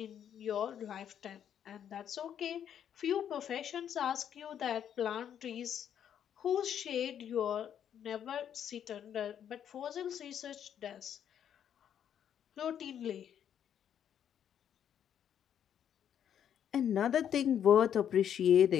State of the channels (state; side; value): quieter; right; 9.3 dB